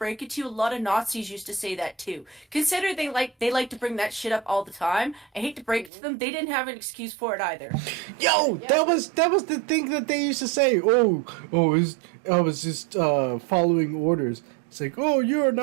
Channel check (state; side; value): drops out; left; at 5.9 s